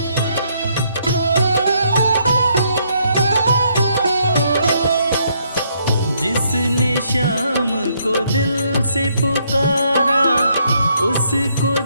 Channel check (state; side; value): inverted; both; correlation -0.72